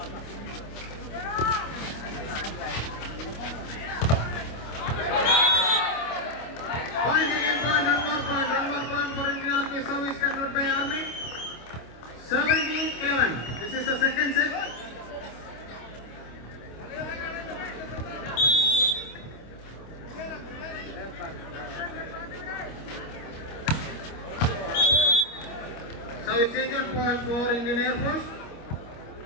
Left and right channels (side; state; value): right; late; 26 ms